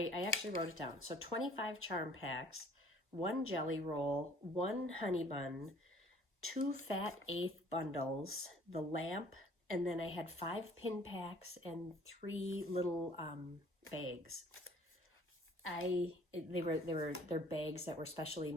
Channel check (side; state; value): both; normal; correlation 0.55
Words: actually wrote it down. So 25 charm packs, 1 jelly roll, 1 honey bun, 2 fat 1/8 bundles, the lamp, And then I had 5 pin packs and 3 little bags. They're bags that were specially